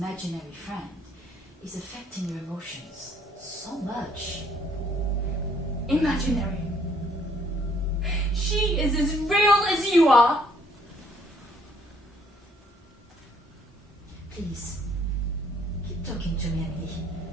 friend is affecting your emotions so much. Imaginary. She is as real as you are. Please, keep talking to me, Emily.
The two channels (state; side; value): normal; both; correlation 0.64